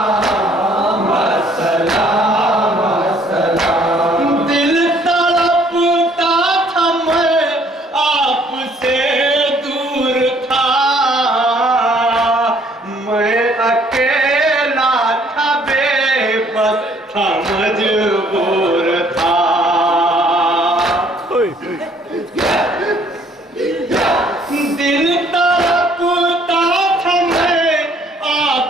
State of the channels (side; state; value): both; normal; correlation 0.62